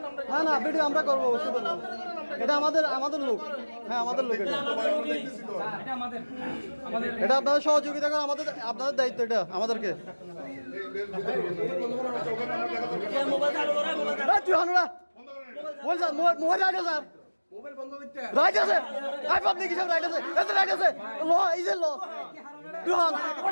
না না ভিডিও আমরা করবো, এটা আমাদের লোক। হ্যাঁ আমাদের লোক, এটা আপনাদের সহযোগিতা করে, আপনাদের দায়িত্ব, এটা আমাদেরকে। মোবাইল রাইট আছে, রাইট আছে, আই পাবলিক হিসাবে রাইট আছে, এত রাইট আছে, ল ইজ এ ল দুহান।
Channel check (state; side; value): inverted; both; correlation -1.00